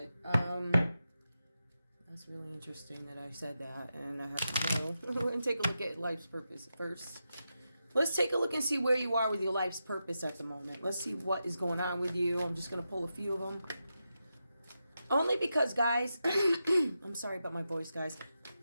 That's really interesting that I said that, and I have to know. We're going to take a look at life's purpose first. Let's take a look and see where you are with your life's purpose at the moment. Let's see what is going on with you. I'm just going to pull a few of them. Only because, guys, I'm sorry about my voice, guys.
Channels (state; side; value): inverted; both; correlation -0.89